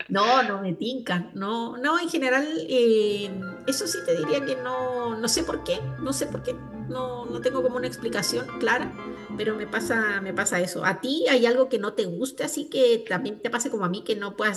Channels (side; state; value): both; identical; correlation 1.00